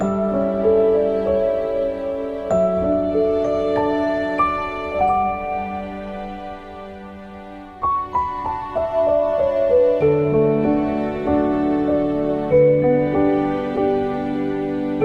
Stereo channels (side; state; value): both; identical; correlation 1.00